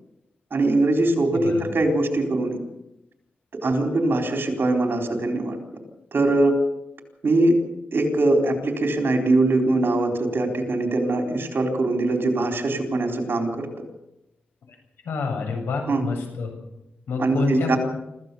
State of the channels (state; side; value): normal; both; correlation 0.87